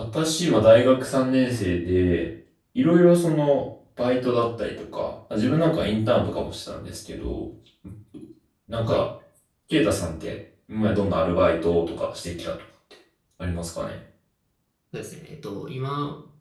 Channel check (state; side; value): identical; both; correlation 1.00